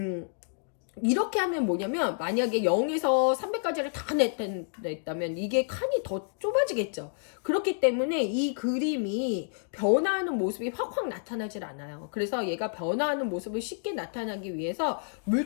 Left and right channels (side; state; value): right; silent; digital silence